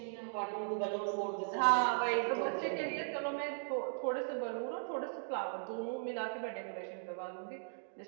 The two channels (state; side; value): silent; left; digital silence